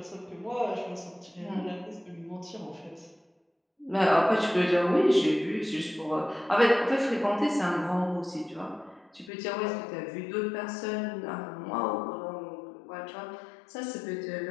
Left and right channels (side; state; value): right; drops out; at 9.3 s